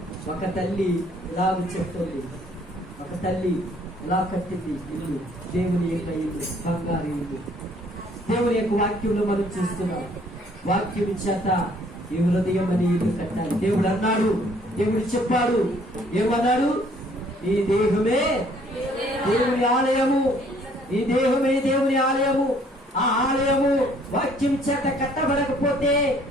ఒక తల్లి ఇలా చెప్తుంది, ఒక తల్లి ఇలా కట్టింది ఇల్లు, దేవుని యొక్క ఇల్లు, బంగారు ఇల్లు. దేవుని యొక్క వాక్యంలో మనం చూస్తున్నాం, వాక్యం చేత ఈ హృదయం అని ఇల్లు కట్టాలి. దేవుడు అన్నాడు, దేవుడు చెప్పాడు, ఏమన్నాడు? ఈ దేహమే దేవుని ఆలయము, ఈ దేహమే దేవుని ఆలయము. ఆ ఆలయము వాక్యం చేత కట్టబడకపోతే,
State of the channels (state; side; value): normal; both; correlation 0.61